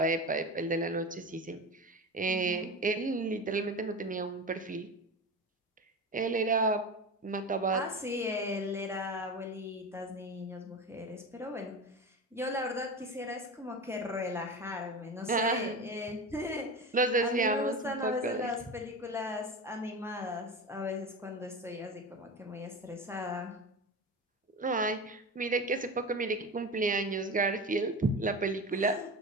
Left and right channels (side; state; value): both; normal; correlation 0.27